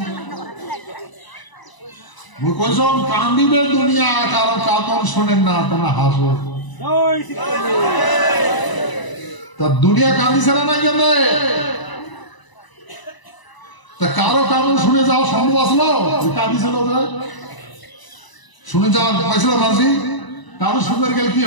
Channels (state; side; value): late; right; 1.0 ms